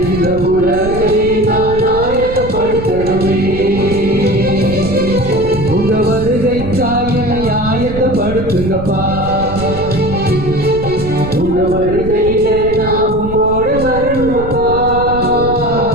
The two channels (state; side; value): noise; right; rumble, 9 dB below the sound